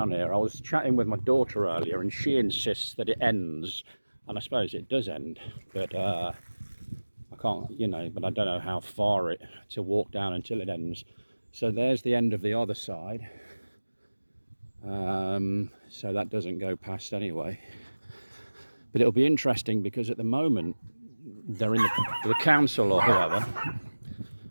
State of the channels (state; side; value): inverted; both; correlation -1.00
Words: here. I was chatting with my daughter earlier and she insists that it ends. And I suppose it does end, but I can't, but I don't know how far to walk down until it ends. So there's the end of the other side. So that doesn't go past anyway. But it'll be interesting because at the moment they're in the council or whoever,